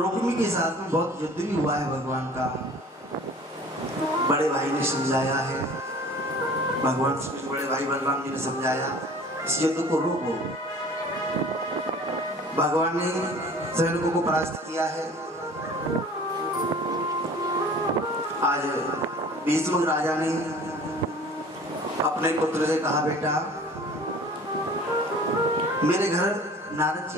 के साथ में बहुत युद्ध भी हुआ है। भगवान का बड़े भाई ने समझाया है, भगवान बड़े भाई बलराम जी ने समझाया इस युद्ध को रोको। भगवान ने सैनिकों को परास्त किया है। आज भीष्म राजा ने अपने पुत्र से कहा, बेटा मेरे घर नारद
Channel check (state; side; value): normal; both; correlation 0.46